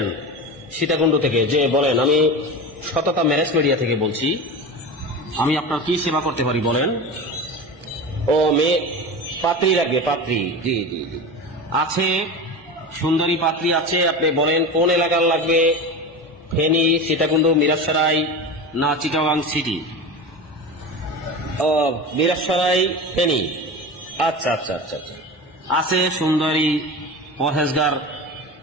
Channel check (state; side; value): normal; both; correlation 0.27